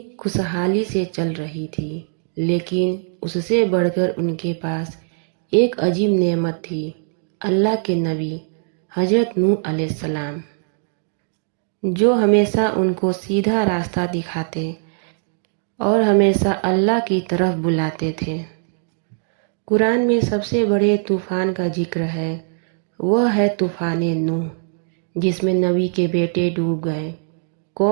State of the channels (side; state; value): left; silent; digital silence